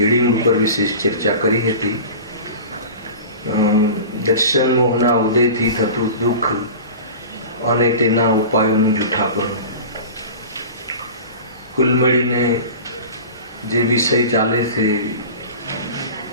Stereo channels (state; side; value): inverted; both; correlation -0.35